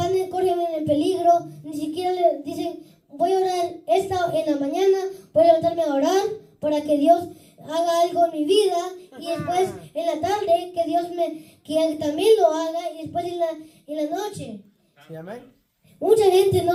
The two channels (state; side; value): identical; both; correlation 1.00